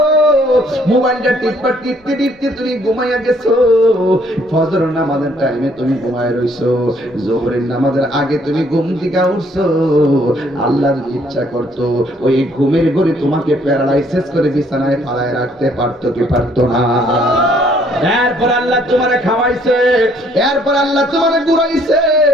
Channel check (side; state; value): both; normal; correlation 0.64